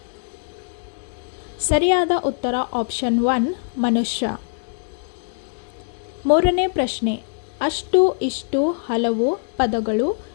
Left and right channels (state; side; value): silent; right; digital silence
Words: ಸರಿಯಾದ ಉತ್ತರ ಆಪ್ಷನ್ 1 ಮನುಷ್ಯ. ಮೂರನೇ ಪ್ರಶ್ನೆ, ಅಷ್ಟು ಇಷ್ಟು ಹಲವು ಪದಗಳು